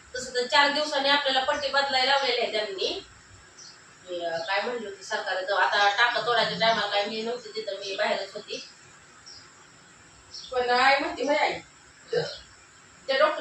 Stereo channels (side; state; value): both; identical; correlation 1.00